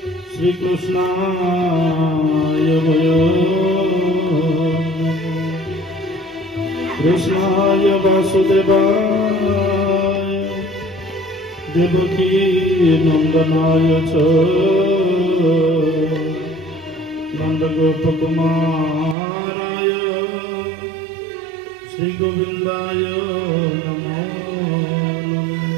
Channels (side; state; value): left; drops out; at 19.2 s